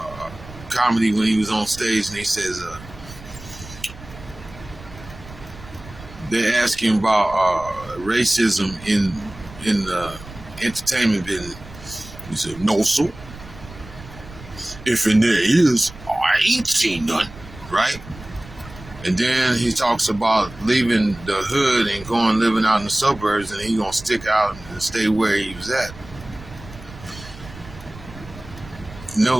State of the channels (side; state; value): right; noise; rumble, 17 dB below the sound